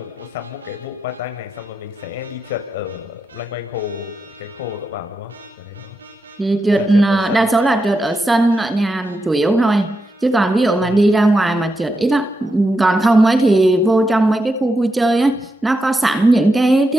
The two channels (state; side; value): normal; both; correlation 0.86